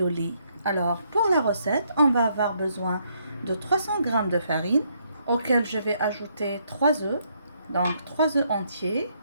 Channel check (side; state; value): both; inverted; correlation -0.73